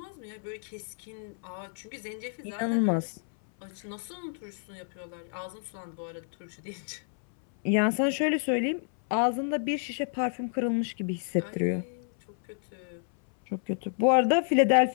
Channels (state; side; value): silent; right; 58 dB below the other